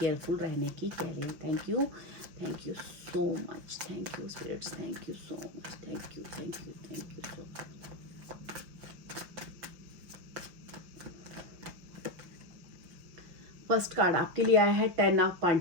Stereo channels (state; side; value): late; left; 5.7 ms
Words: रहने की कह रहे हैं। Thank you so much, thank you spirits, thank you so much, thank you so much. First card आपके लिए आया है 10 ऑफ